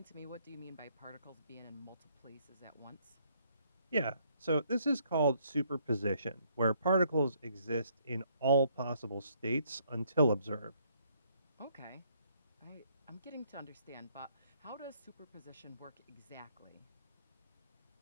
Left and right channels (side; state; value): both; inverted; correlation -0.68